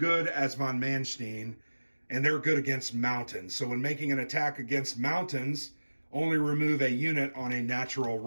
as von Manstein, and they're good against mountains. So when making an attack against mountains, only remove a unit on a natural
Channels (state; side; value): inverted; both; correlation -1.00